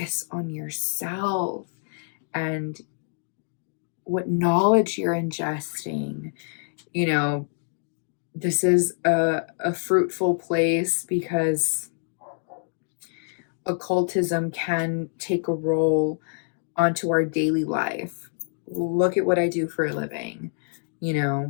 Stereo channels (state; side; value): silent; right; digital silence